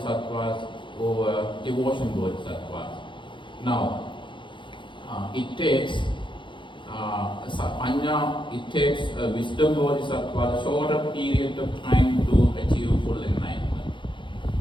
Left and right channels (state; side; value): late; right; 0.23 ms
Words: or devotion bodhisattvas. Now, it takes Panya, it takes a wisdom bodhisattva a shorter period of time to achieve full enlightenment.